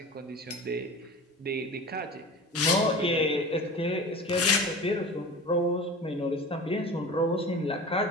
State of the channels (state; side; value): normal; both; correlation 0.34